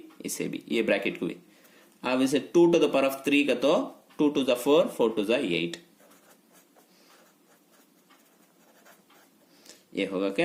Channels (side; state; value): both; identical; correlation 1.00